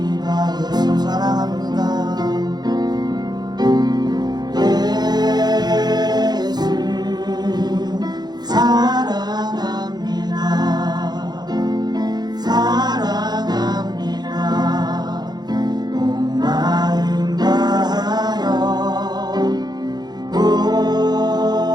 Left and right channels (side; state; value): left; late; 0.20 ms